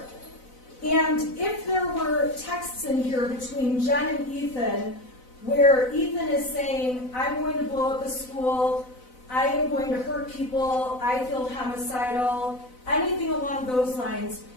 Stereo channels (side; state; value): right; late; 4.0 ms